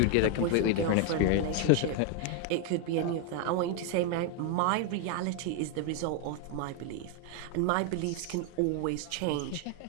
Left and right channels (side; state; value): both; different; correlation 0.01